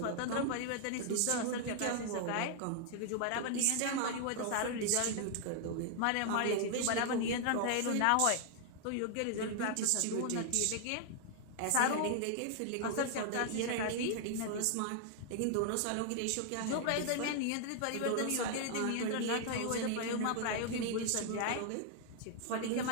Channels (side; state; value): both; different; correlation 0.00